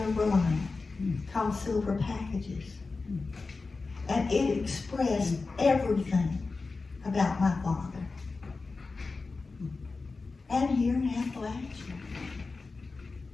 Reliant called Silver Packages. And it expressed everything about my father. And here in Appalachia.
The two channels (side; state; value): right; quieter; 4.0 dB